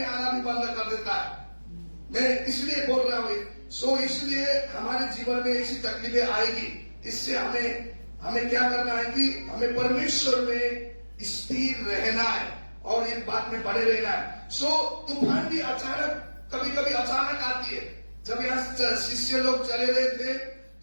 आना भी बंद कर देता है। मैं इसलिए बोल रहा हूं, इसलिए हमारे जीवन में ऐसी तकलीफें आएगी। इससे हमें क्या करना है कि हमें परमेश्वर में स्थिर रहना है और इस बात में बड़े रहना है। तूफान भी अचानक, कभी कभी अचानक आती है। जब यहाँ शिष्य लोग चले रहे थे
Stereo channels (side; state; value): both; inverted; correlation -1.00